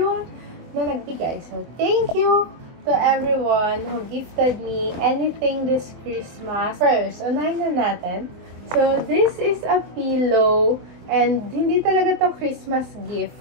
na nagbigay. So, thank you to everyone who gifted me anything this Christmas. First, unahin na natin. So, this is a pillow. And, hindi talaga to Christmas gift.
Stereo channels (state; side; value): late; left; 24 ms